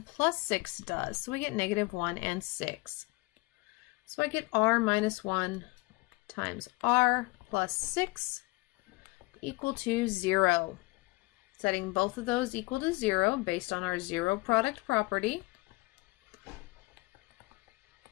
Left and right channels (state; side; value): quieter; right; 24.2 dB